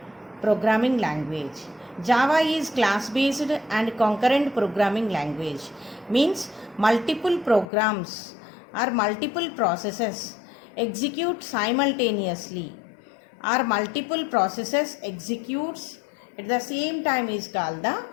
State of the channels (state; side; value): drops out; right; at 7.7 s